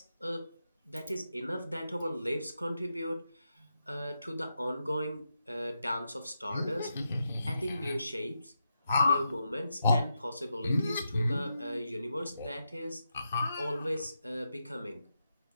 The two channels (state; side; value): inverted; both; correlation -0.85